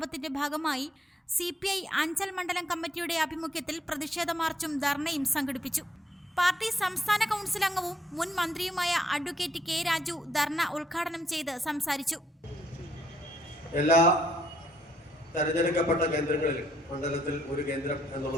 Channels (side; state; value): both; normal; correlation 0.71